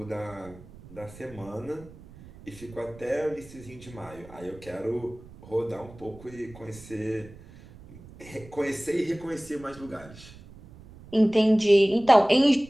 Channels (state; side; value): noise; right; rumble, 20 dB below the sound